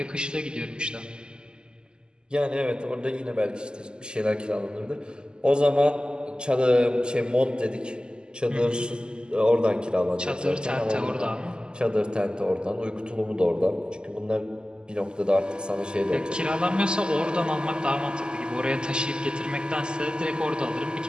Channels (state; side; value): late; left; 0.047 ms